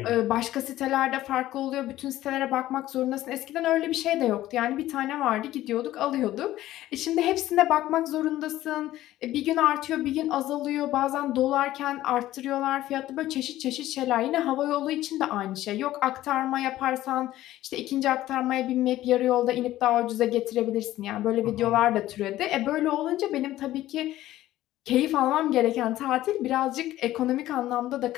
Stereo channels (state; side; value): quieter; right; 14.7 dB